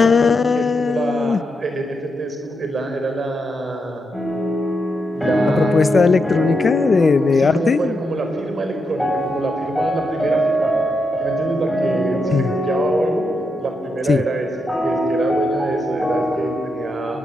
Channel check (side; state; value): both; normal; correlation 0.84